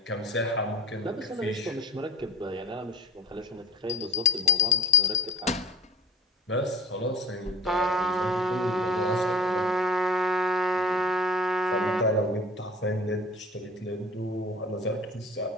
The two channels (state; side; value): normal; both; correlation 0.43